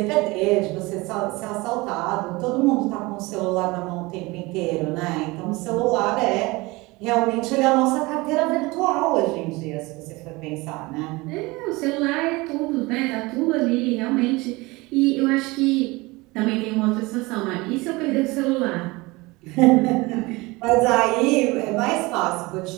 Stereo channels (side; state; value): left; quieter; 23.0 dB